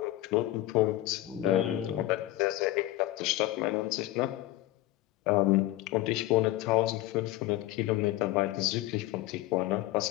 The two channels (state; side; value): quieter; right; 16.0 dB